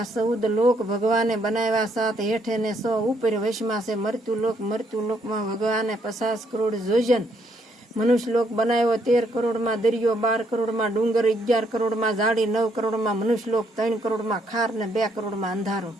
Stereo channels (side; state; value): both; normal; correlation 0.71